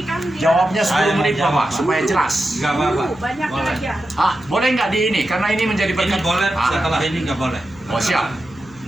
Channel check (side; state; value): left; noise; hum, 25 dB below the sound